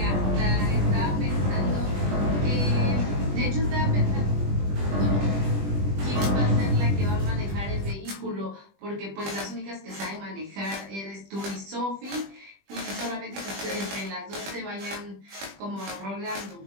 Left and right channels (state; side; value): late; left; 20 ms